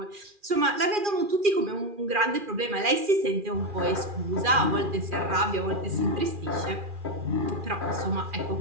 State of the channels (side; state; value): left; late; 2.4 ms